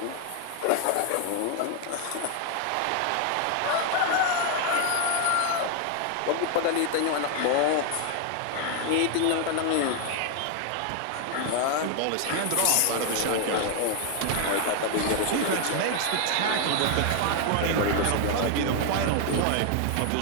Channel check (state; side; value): different; both; correlation 0.00